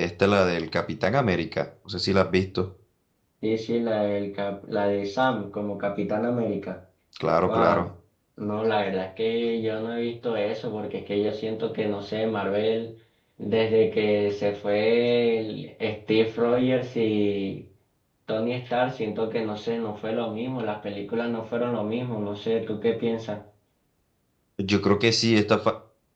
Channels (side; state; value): both; identical; correlation 1.00